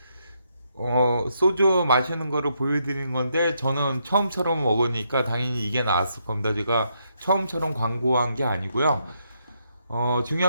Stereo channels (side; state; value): both; inverted; correlation -0.77